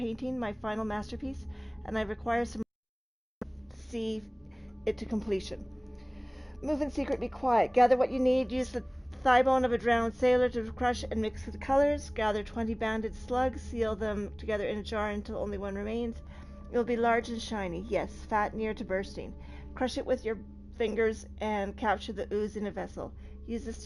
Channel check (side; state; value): both; identical; correlation 1.00